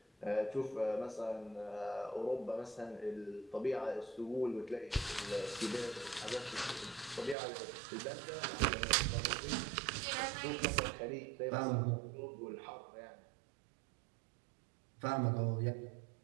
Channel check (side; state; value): left; drops out; at 7.4 s